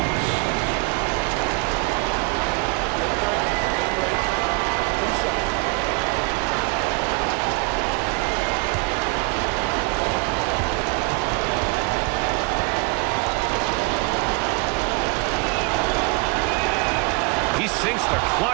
He sinks the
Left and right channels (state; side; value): quieter; left; 27.3 dB